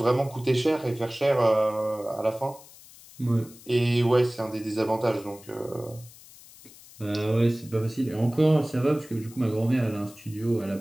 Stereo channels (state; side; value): noise; left; hiss, 21 dB below the sound